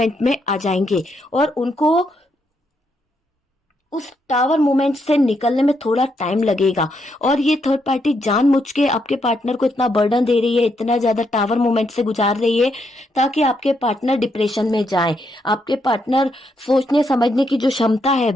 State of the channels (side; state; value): both; normal; correlation 0.78